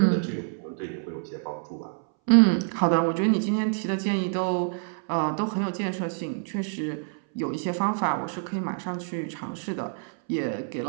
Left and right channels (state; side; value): silent; left; 60 dB below the other